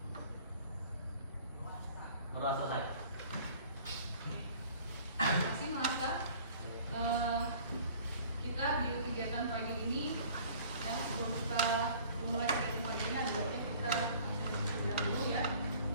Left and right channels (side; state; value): both; inverted; correlation -0.50